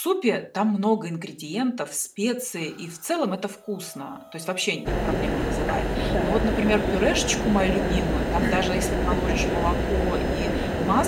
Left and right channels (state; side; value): identical; both; correlation 1.00